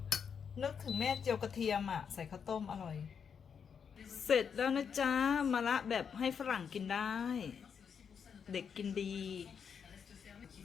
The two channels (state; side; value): quieter; right; 6.9 dB